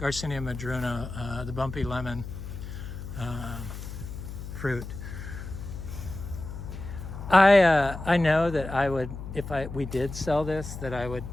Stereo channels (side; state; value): left; noise; hum, 9 dB below the sound